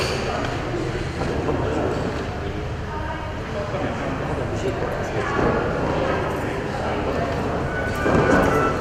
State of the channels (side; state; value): both; identical; correlation 1.00